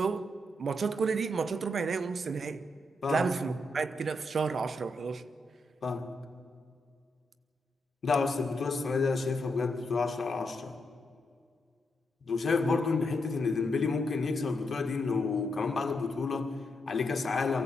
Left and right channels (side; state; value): both; normal; correlation 0.82